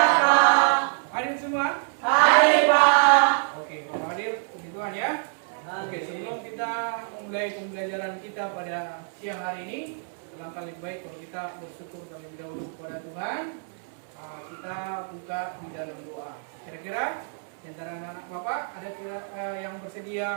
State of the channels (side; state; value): left; silent; 61 dB below the other